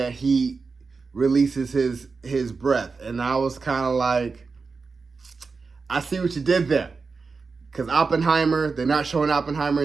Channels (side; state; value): left; quieter; 4.6 dB